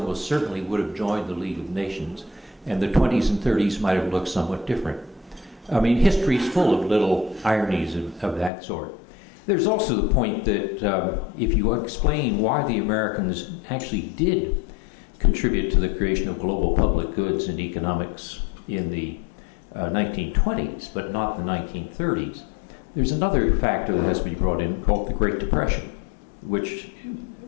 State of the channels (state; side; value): drops out; right; at 8.5 s